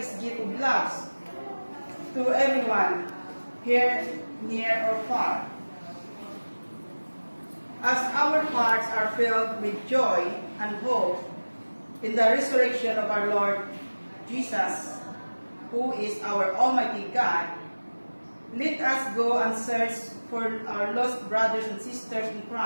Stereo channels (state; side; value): inverted; both; correlation -1.00